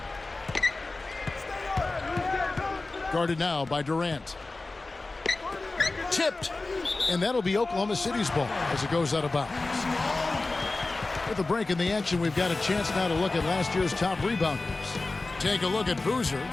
Guarded now by Durant. Tipped. And that'll be Oklahoma City's ball as it goes out of bounds. With a break in the action, we've got a chance now to look at last year's top rebounders. Take a look at Boozer,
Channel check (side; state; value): right; quieter; 3.3 dB